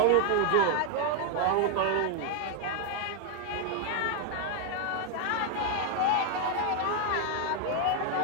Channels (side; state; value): both; different; correlation 0.00